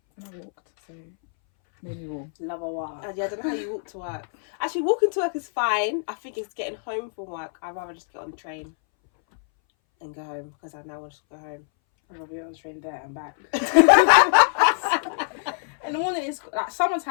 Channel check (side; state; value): right; silent; 61 dB below the other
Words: And I walked, so made me warm. Love a walk. Yeah, I don't know how you walk to work. Actually, walking to work is fine. I think it's getting home from work. I'd rather just get on the train and go home because I now want to go home. I'm gonna be on the train there and back. In the morning, it's like